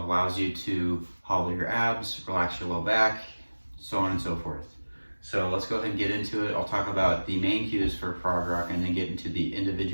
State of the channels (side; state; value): both; inverted; correlation -1.00